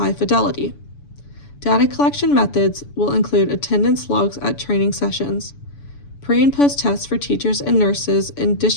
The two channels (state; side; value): late; right; 7.0 ms